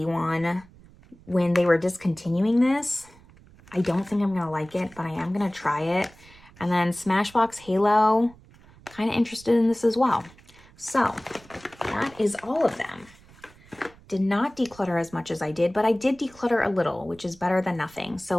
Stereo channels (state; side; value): noise; right; rumble, 25 dB below the sound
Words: one, when they were discontinuing this. I don't think I'm going to like it, but I am going to try it. And then Smashbox Halo, kind of interested in this as well. So that is all of them. Did not declutter as much as I did, but I did declutter a little, which is better than nothing. So